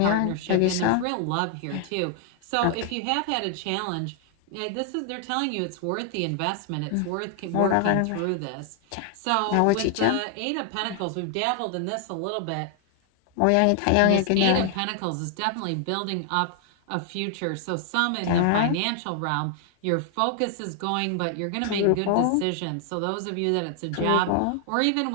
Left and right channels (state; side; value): different; both; correlation 0.00